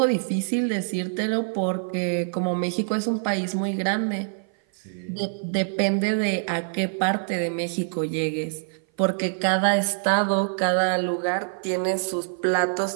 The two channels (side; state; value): left; silent; 56 dB below the other